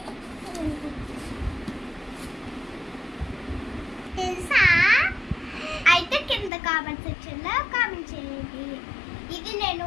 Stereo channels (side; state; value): right; drops out; at 6.5 s